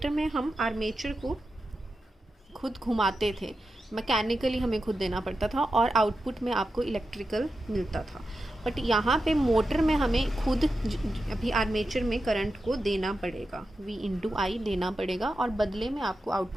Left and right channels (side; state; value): both; normal; correlation 0.90